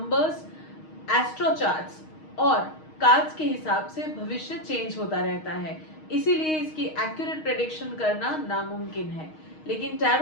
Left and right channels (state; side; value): late; right; 6.4 ms